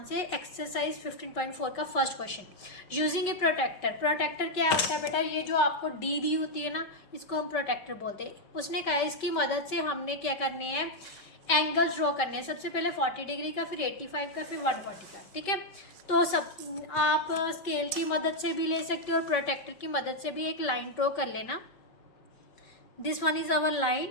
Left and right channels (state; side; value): late; right; 5.2 ms